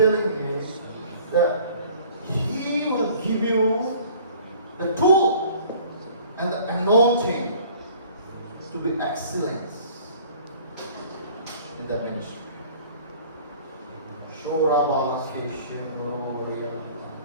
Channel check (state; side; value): inverted; both; correlation -0.51